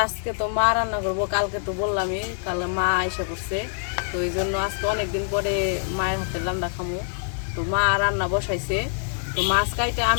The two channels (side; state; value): right; silent; digital silence